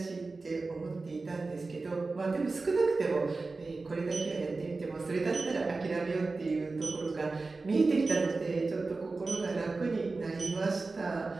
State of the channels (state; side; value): quieter; left; 3.7 dB